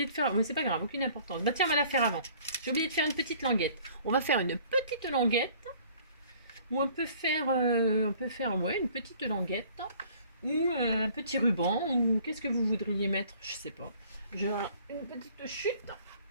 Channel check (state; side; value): inverted; both; correlation -0.54